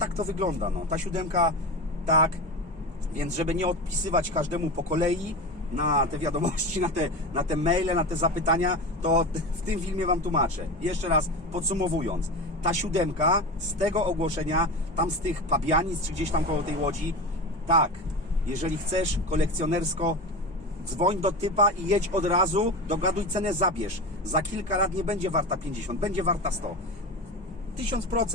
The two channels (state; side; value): normal; both; correlation 0.26